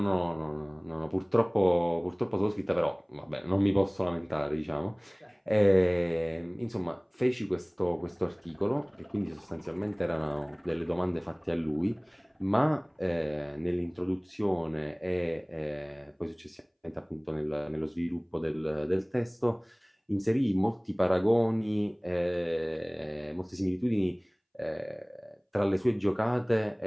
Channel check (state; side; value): identical; both; correlation 1.00